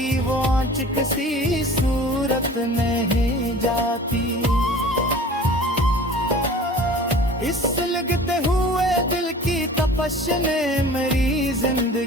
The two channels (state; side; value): normal; both; correlation 0.43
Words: वो आँच किसी सूरत नहीं जाती। इस लगते हुए दिल की तपश ने मेरी